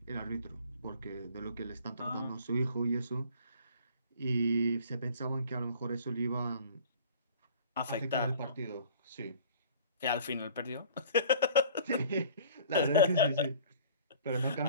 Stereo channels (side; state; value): both; inverted; correlation -0.49